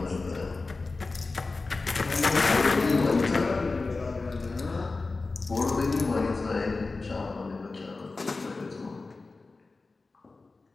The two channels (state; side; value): quieter; right; 3.7 dB